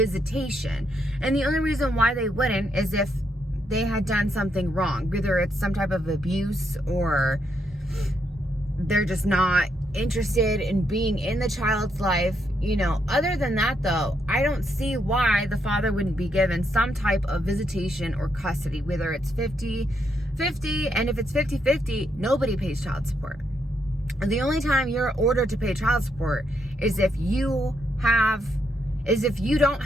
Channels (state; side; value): normal; both; correlation 0.77